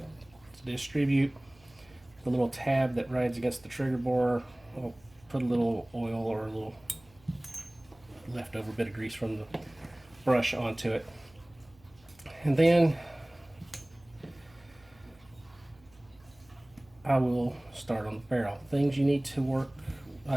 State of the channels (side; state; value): right; noise; hum, 28 dB below the sound